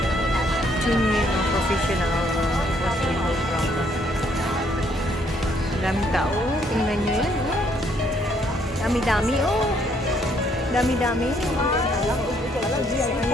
ito yung professional hospital program. Daming tao. Tingnan nyo yan. Oh. Dami-dami. Oh. Dami-dami.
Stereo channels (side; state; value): both; normal; correlation 0.68